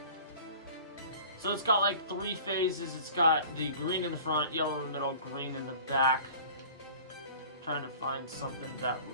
So it's got like 3 phases. It's got the green in the front, yellow in the middle, green in the back. I'm trying to find something that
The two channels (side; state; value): both; inverted; correlation -0.44